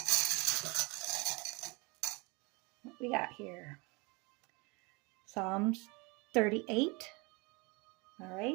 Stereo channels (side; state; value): left; quieter; 27.8 dB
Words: what we got here. Psalms 38. All